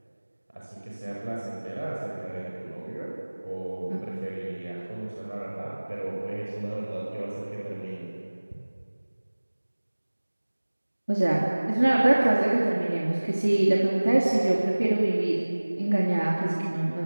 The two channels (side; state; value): both; inverted; correlation -1.00